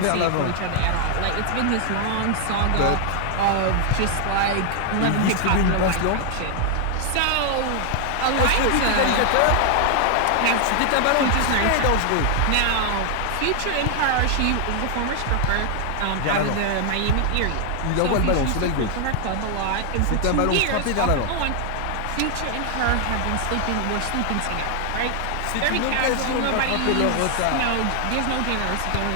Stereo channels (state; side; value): different; both; correlation 0.00